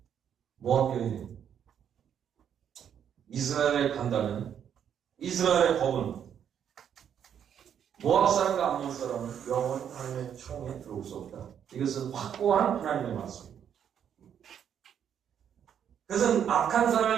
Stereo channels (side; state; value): left; quieter; 8.8 dB